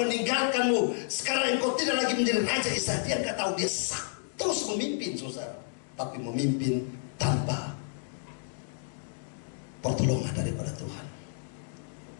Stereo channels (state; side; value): silent; right; digital silence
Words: sekarang engkau tidak lagi menjadi raja Israel. Dia gak tahu, dia terus memimpin, saudara, tapi memimpin tanpa pertolongan daripada Tuhan.